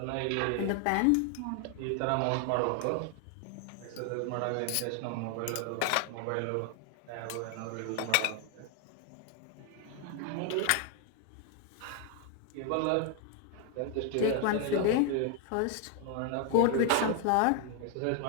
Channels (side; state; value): both; different; correlation 0.00